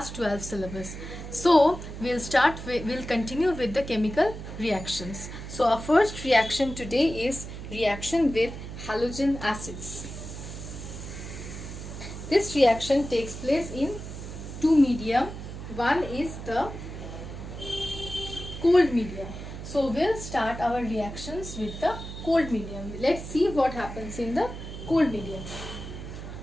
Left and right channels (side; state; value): right; noise; hum, 10 dB below the sound